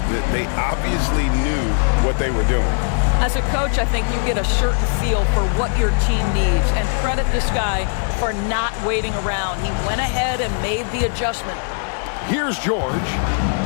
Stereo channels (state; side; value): silent; right; digital silence